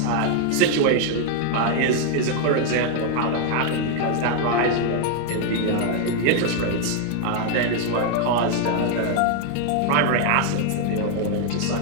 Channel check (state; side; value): different; both; correlation 0.00